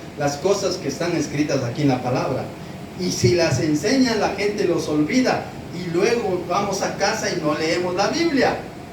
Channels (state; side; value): identical; both; correlation 1.00